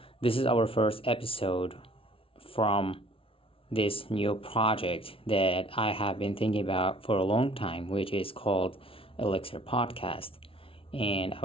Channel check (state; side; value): late; right; 0.26 ms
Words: This is our first episode from this new project that I have been thinking about for a long time, which is called Elixir Podcast. And I